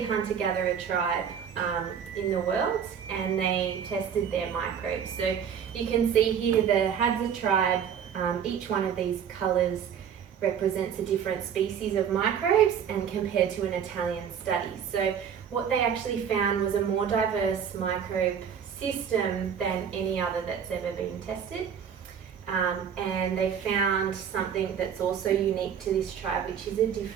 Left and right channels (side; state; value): left; quieter; 7.9 dB